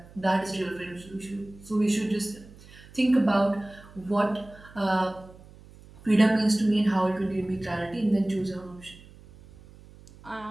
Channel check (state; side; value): noise; right; hum, 22 dB below the sound